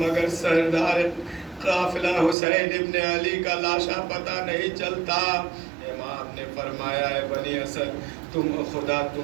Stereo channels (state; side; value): drops out; left; at 2.4 s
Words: سردار قافلہ حسین ابن علی کا لاشا پتہ نہیں چلتا۔ امام نے فرمایا، ہے بنی اسد خدا